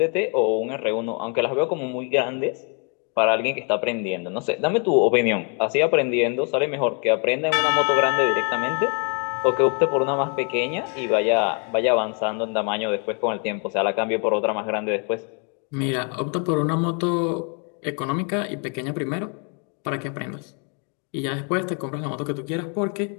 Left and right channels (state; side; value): quieter; right; 38.8 dB